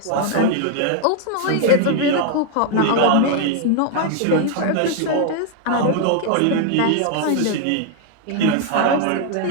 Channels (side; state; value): both; different; correlation 0.00